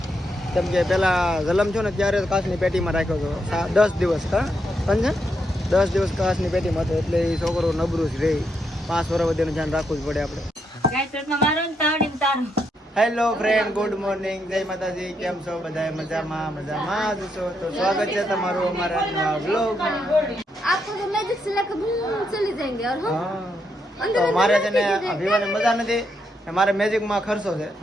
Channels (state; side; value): normal; both; correlation 0.79